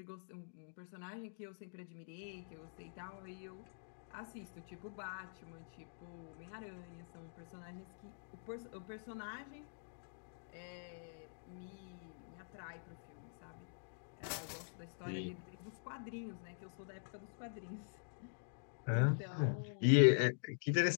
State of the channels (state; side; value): silent; right; digital silence